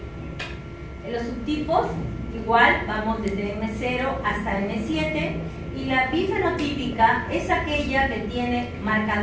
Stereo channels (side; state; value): both; identical; correlation 1.00